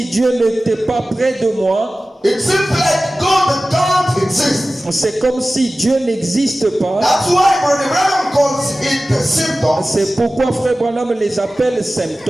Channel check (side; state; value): both; normal; correlation 0.96